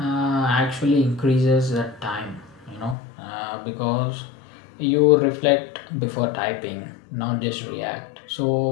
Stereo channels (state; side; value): drops out; right; at 3.0 s